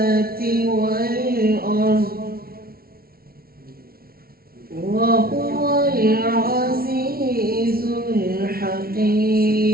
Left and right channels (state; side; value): late; left; 0.44 ms